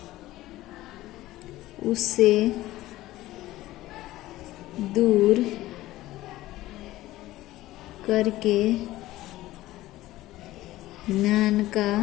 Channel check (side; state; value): right; quieter; 16.4 dB